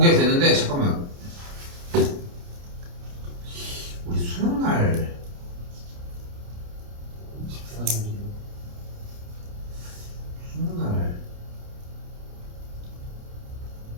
되는데, 잠깐만. 우리 수능 날 14일. 수능 날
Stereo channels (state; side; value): late; left; 29 ms